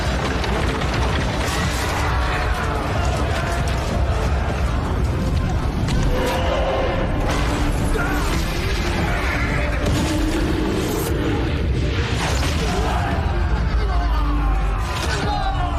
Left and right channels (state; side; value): identical; both; correlation 1.00